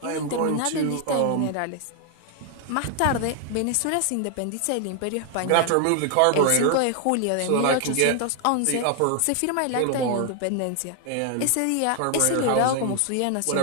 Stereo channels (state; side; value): different; both; correlation 0.00